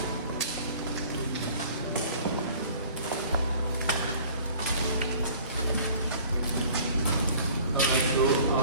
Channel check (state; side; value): inverted; both; correlation -0.49